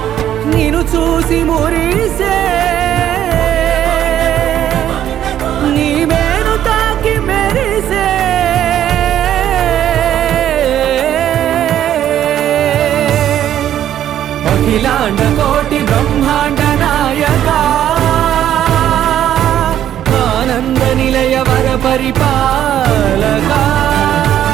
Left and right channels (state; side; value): quieter; left; 11.1 dB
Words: నిన్ను చూసి మురిసే నీ మేను తాకి మెరిసే అఖిలాండ కోటి బ్రహ్మాండ నాయక ఆనంద నిలయ వర పరిపాలక